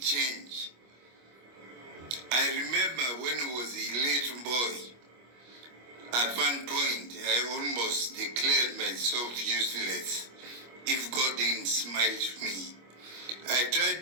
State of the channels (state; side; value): late; left; 25 ms